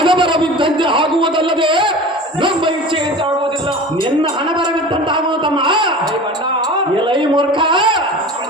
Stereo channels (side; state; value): both; normal; correlation 0.36